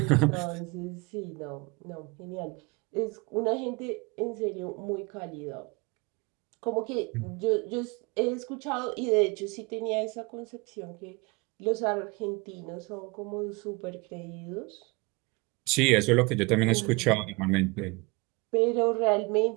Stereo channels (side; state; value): left; quieter; 27.1 dB